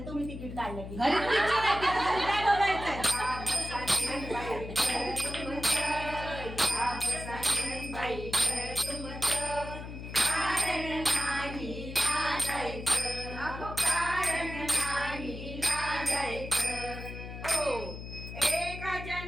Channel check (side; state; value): left; noise; hum, 9 dB below the sound